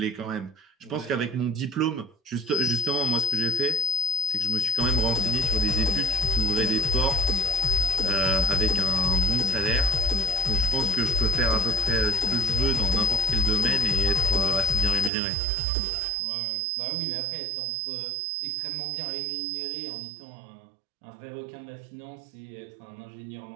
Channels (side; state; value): left; drops out; at 15.1 s